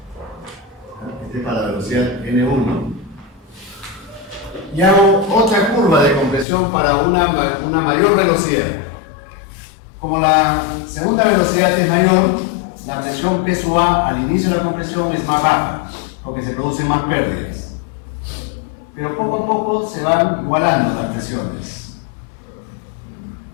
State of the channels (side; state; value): right; drops out; at 6.5 s